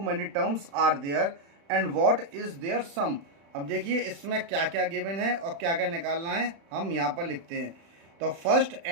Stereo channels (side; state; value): left; late; 36 ms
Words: many terms are there and what is their sum. अब देखिए इसमें क्या क्या गिवन है और क्या क्या निकालना है, हम यहाँ पर लिखते हैं। तो first